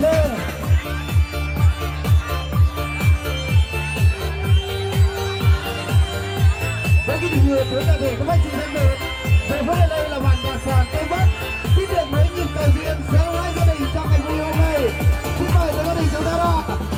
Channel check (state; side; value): identical; both; correlation 1.00